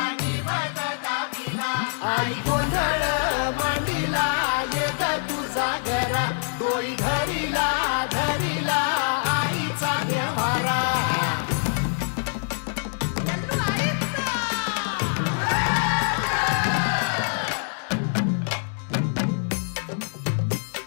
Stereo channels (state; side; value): silent; right; digital silence